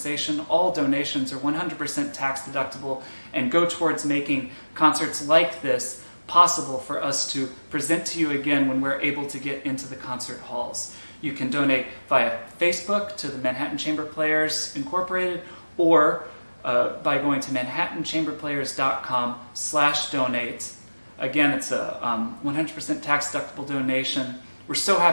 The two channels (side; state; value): both; inverted; correlation -1.00